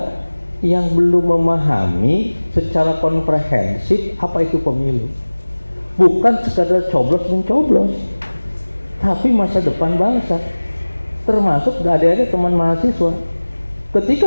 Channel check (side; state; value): both; inverted; correlation -1.00